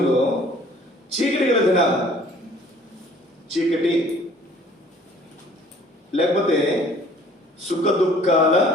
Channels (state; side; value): normal; both; correlation 0.54